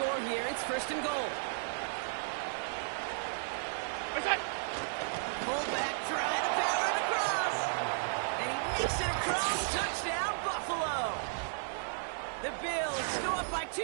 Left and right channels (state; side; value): silent; left; 55 dB below the other